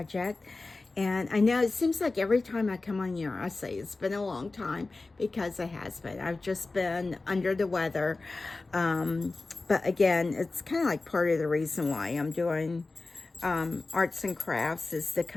and I know it seems like every time I come on here I say it's been a long time, because it has been. I've just been under the weather, but again, it's kind of like part of the reason why I'm doing arts and crafts, is to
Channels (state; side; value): quieter; right; 3.5 dB